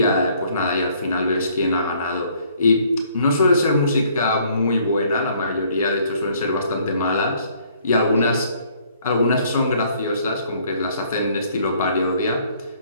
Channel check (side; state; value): both; inverted; correlation -0.62